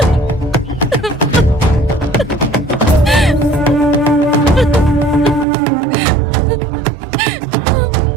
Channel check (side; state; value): left; drops out; at 5.5 s